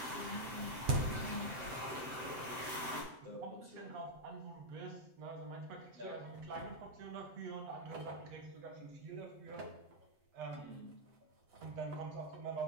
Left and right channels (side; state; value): left; late; 7.8 ms